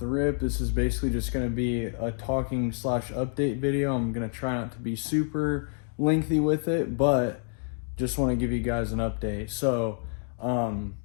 rip. This is basically just going to be a talking slash update video. I'm going to try not to be super lengthy with it, but just want to give you guys an update. So I'm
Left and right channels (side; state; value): right; silent; 59 dB below the other